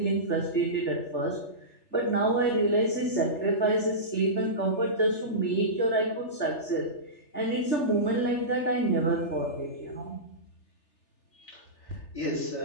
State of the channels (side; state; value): right; late; 3.3 ms